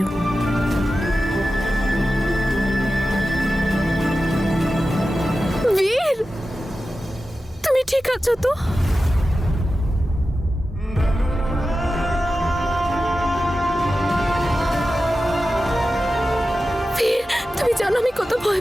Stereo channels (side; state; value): both; normal; correlation 0.93